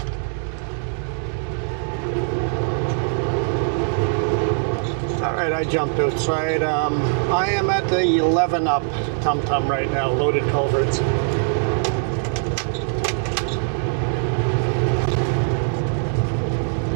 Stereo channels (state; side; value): silent; left; 64 dB below the other